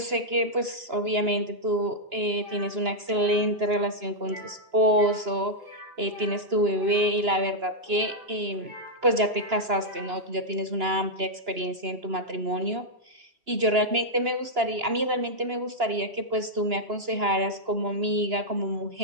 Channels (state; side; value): late; left; 2.9 ms